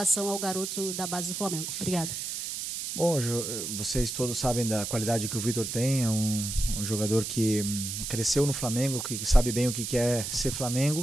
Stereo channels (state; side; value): noise; right; hiss, 5 dB below the sound